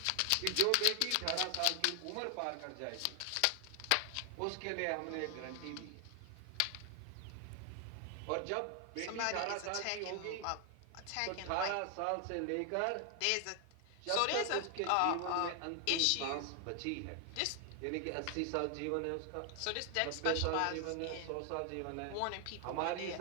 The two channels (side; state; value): both; different; correlation 0.00